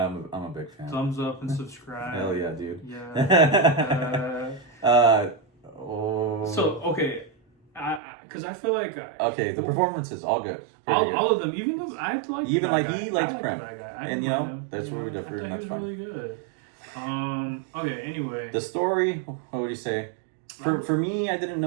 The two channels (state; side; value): drops out; left; at 8.0 s